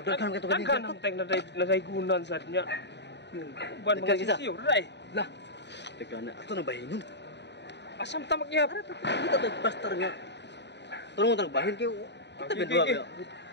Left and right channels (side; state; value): right; late; 0.50 ms